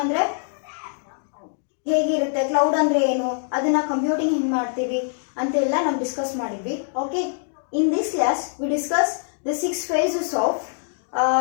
ಅಂದರೆ ಹೇಗಿರುತ್ತೆ, ಕ್ಲೌಡ್ ಅಂದರೆ ಏನು, ಅದನ್ನ ಕಂಪ್ಯೂಟಿಂಗ್ ಹೆಂಗೆ ಮಾಡ್ತೀವಿ ಅಂತೆಲ್ಲ ನಾವು ಡಿಸ್ಕಸ್ ಮಾಡಿದ್ವಿ. Okay, in this class we discuss the 6 phases of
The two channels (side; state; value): right; silent; digital silence